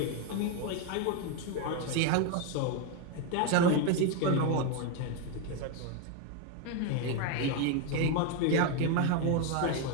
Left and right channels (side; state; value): both; different; correlation 0.02